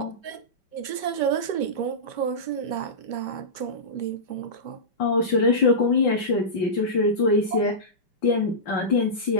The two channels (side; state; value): right; late; 5.1 ms